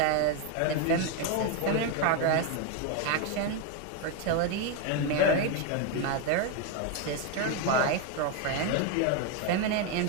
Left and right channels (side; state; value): both; different; correlation 0.02